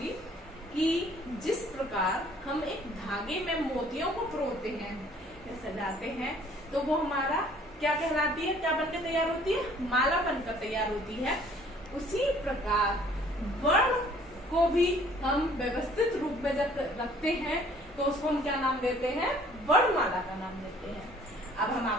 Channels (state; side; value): normal; both; correlation 0.56